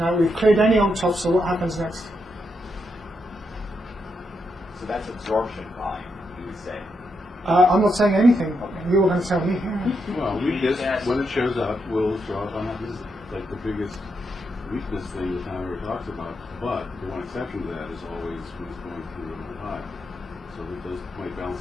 we've cleared any old tops, so what happens next? So that's absorption volume, you would say. I'm not saying anything. You're going to tell me. Well, weakness, when it shows up, will show up on that. This is like the biggest weakness thing that Tom ever talks about. But the one exception to that is always when it's going through a high. So that those might balance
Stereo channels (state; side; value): normal; both; correlation 0.82